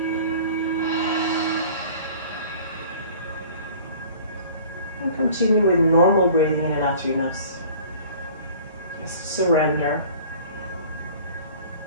And continue with normal breathing in and out through your nose. Just surrender.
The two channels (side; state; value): both; inverted; correlation -0.47